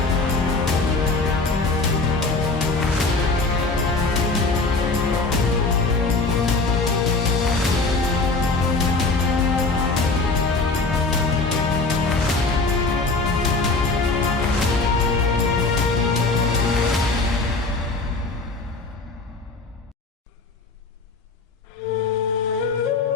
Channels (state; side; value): quieter; right; 3.6 dB